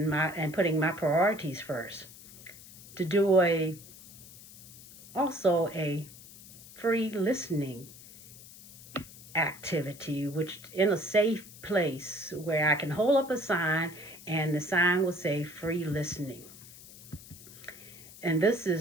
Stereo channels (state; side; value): noise; left; hiss, 18 dB below the sound